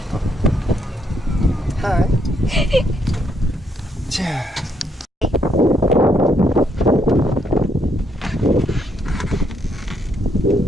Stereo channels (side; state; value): both; normal; correlation 0.74